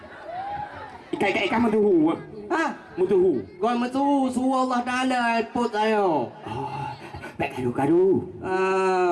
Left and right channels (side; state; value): both; identical; correlation 1.00